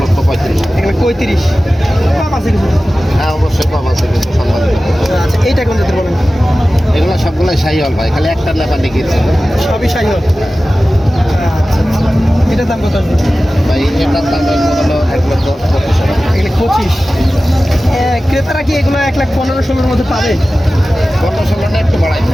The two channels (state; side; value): normal; both; correlation 0.96